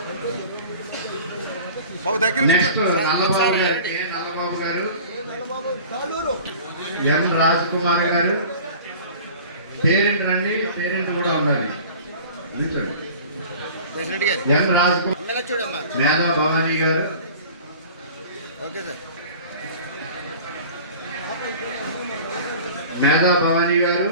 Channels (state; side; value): inverted; both; correlation -0.42